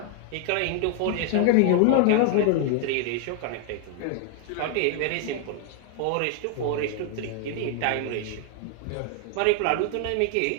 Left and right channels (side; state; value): both; different; correlation 0.00